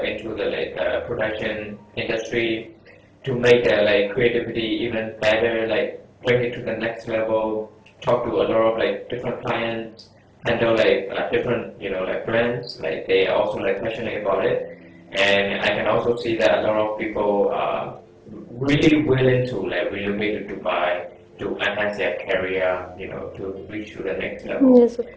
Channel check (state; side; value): identical; both; correlation 1.00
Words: into the like the production industry, to make their like creativity even better, like bring it to the next level, talk to a lot of like different clients, handle like different, you know, like brands, like they are also like passionate about it. And I can also see that a lot of people really willing to like relocate to Dubai to enhance their career, you know, to reach to the next level. Yes, of course.